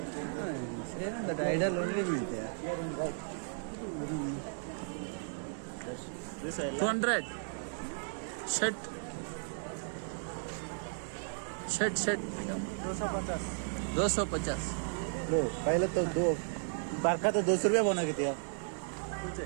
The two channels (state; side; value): silent; left; digital silence